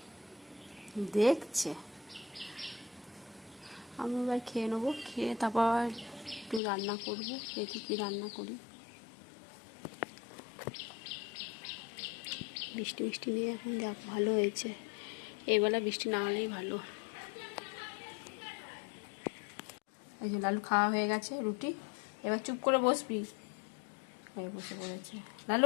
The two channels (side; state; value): right; drops out; at 6.6 s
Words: দেখছে। আমি এবার খেয়ে নেবো, খেয়ে তারপর একটু রান্না করবো, দেখি কি রান্না করি। বৃষ্টি বৃষ্টি নিয়ে এখন যাক, ভালো হয়েছে। এবেলা বৃষ্টি না হলেই ভালো। এই যে লালু খাওয়া হয়ে গেছে রুটি, এবার চুপ করে বসবি। বসে পড়েছে